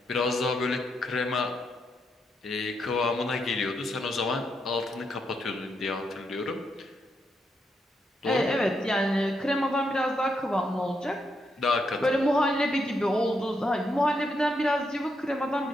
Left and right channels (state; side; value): normal; both; correlation 0.80